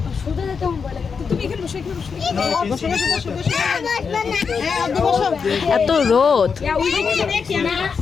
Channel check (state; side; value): quieter; right; 5.8 dB